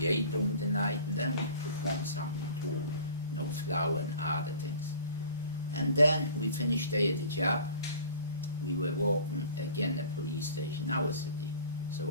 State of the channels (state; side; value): inverted; both; correlation -0.45